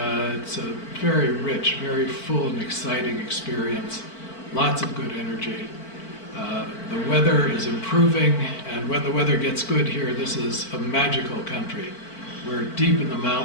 a very rich, very full and exciting experience. Lots of good energy. The weather is improving, and when the weather gets good here, this is a magical country. We're deep in the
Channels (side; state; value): right; late; 4.5 ms